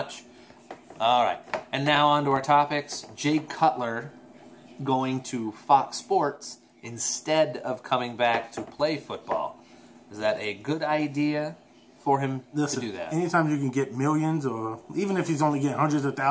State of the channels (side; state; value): both; identical; correlation 1.00